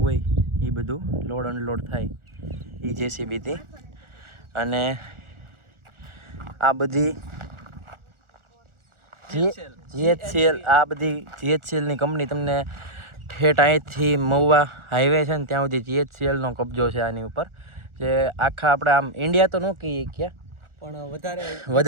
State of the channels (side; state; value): left; late; 1.4 ms